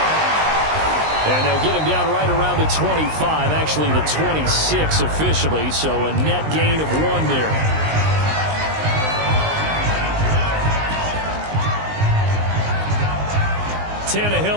And they'll get him down right around the 25, actually the 26 officially, so a net gain of 1 there.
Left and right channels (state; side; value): late; left; 19 ms